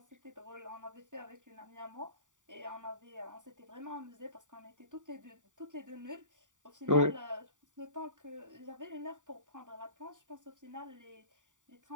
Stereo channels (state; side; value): late; left; 0.87 ms